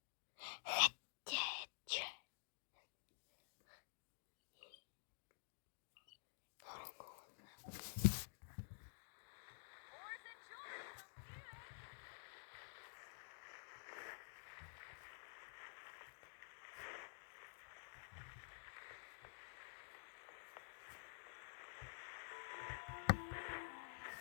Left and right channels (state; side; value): silent; right; digital silence